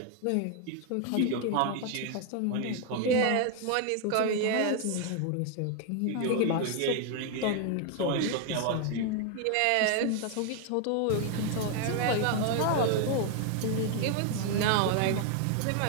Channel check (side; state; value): both; different; correlation 0.00